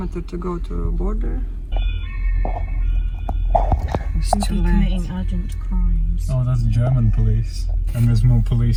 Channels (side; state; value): both; identical; correlation 1.00